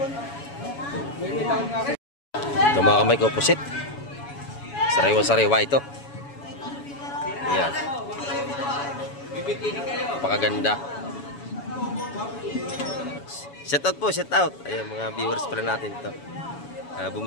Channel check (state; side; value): late; right; 7.1 ms